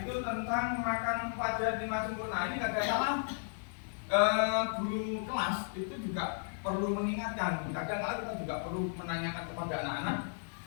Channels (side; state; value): right; silent; digital silence